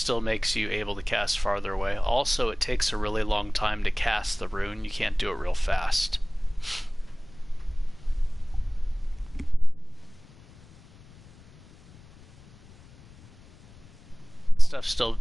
makes you able to cast farther away. Also, it takes a really long time to cast the rune. You can't do it real fast. Stuff's still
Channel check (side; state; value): left; noise; rumble, 23 dB below the sound